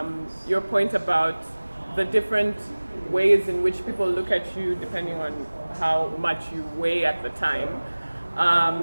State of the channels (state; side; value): inverted; both; correlation -1.00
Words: your point about the different ways in which people look at you depending on how much you weigh at the time.